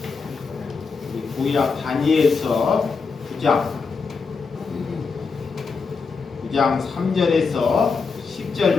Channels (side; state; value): right; quieter; 4.9 dB